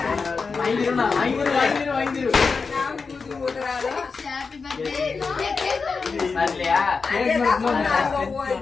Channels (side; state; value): right; quieter; 4.8 dB